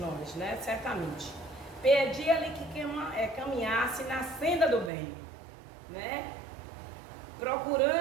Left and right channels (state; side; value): drops out; left; at 4.9 s